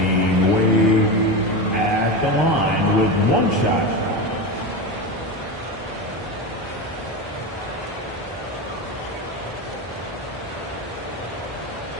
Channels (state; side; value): normal; both; correlation 0.20